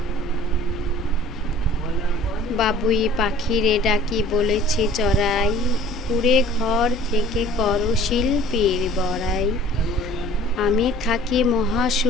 বাবুই পাখিরে ডাকি বলেছি চড়াই, কুড়ে ঘর থেকে করো শিল্পীর বড়াই। আমি থাকি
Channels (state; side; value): normal; both; correlation 0.49